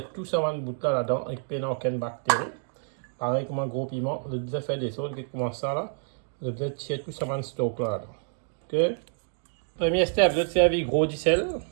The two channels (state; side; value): silent; left; digital silence